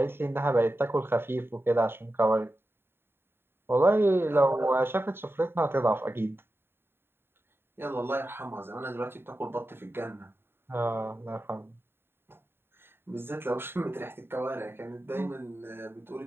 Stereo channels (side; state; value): left; late; 0.11 ms